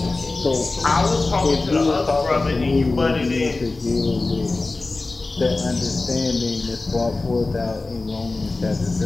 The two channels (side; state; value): right; quieter; 3.4 dB